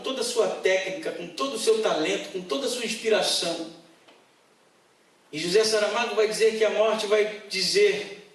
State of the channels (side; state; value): both; identical; correlation 1.00